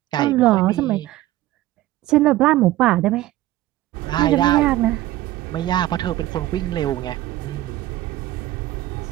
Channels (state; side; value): quieter; left; 15.5 dB